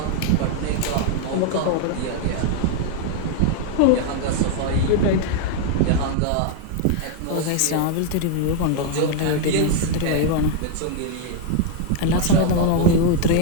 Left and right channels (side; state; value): both; different; correlation 0.00